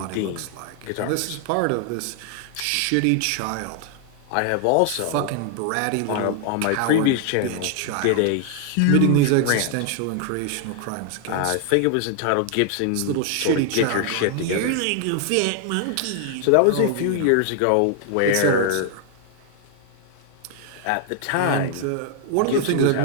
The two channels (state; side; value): different; both; correlation 0.00